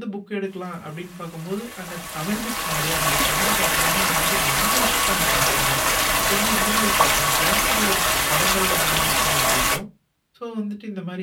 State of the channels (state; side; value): identical; both; correlation 1.00